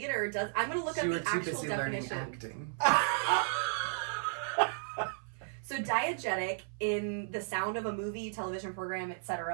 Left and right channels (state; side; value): silent; left; 55 dB below the other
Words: does... I'm going to look up the actual definition. Acting. So diegetic, in the sound of a movie, television program,